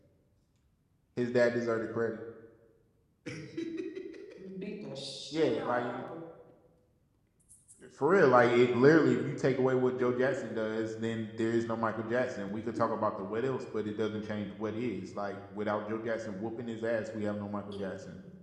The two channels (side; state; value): both; identical; correlation 1.00